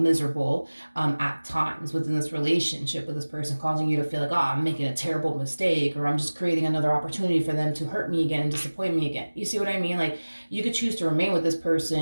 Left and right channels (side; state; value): both; inverted; correlation -1.00